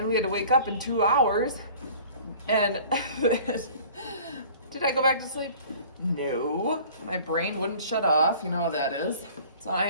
we had to wake up in 2 hours. And did I go back to sleep? No. My brain wouldn't shut off. You know how that is. So I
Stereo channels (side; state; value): both; inverted; correlation -0.47